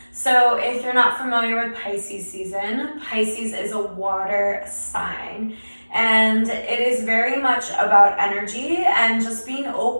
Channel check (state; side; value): inverted; both; correlation -1.00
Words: So if you're not familiar with Pisces season, Pisces is a water sign. And it is very much about energy and just being